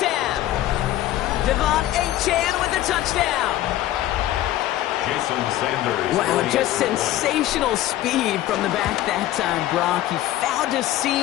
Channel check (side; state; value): right; quieter; 14.0 dB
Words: half. Devon Achane with the touchdown. Jason Sanders. Wow, just sensational speed from the back that time, Brock. He found a